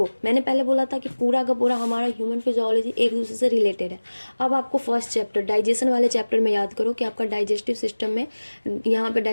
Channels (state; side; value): inverted; both; correlation -1.00